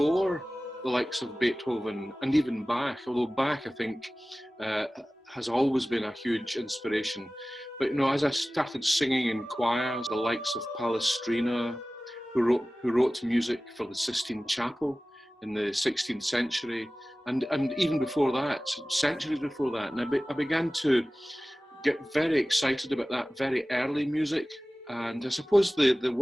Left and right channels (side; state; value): both; normal; correlation 0.97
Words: the likes of Beethoven and even Bach, although Bach, I think, has always been a huge inspiration. But as I started singing in choirs, the likes of Palestrina, who wrote music for the Sistine Chapel in the 16th century, and even before that, centuries before that, and I began to get very excited about that very early music. And I suppose the